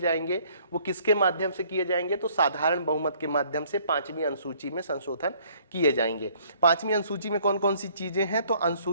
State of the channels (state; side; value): inverted; both; correlation -0.61